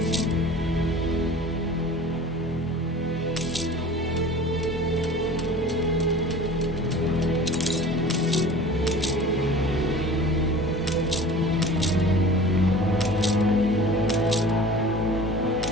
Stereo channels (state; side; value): normal; both; correlation 0.41